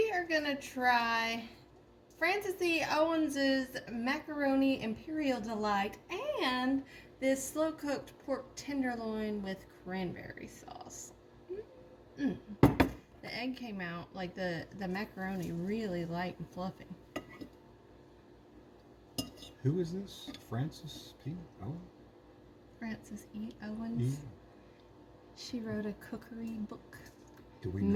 are going to try Francis E. Owens's Macaroni Imperial Delight and this slow-cooked pork tenderloin with cranberry sauce. The egg came out, like the macaroni, really light and fluffy. Who is this? Francis P. Owens? Francis E. Owens. Yeah. She wrote a cookery book Do we know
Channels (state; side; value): identical; both; correlation 1.00